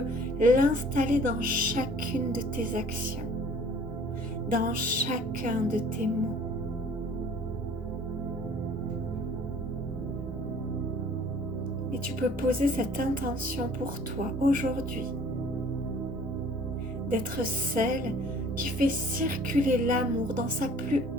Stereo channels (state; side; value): normal; both; correlation 0.52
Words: l'installer dans chacune de tes actions, dans chacun de tes mots. Et tu peux poser cette intention pour toi aujourd'hui, d'être celle qui fait circuler l'amour dans sa plus